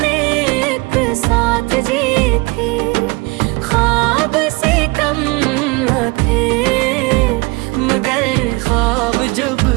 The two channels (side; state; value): left; quieter; 26.0 dB